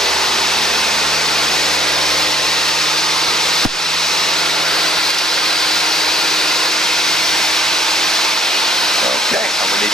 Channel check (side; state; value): both; normal; correlation 0.63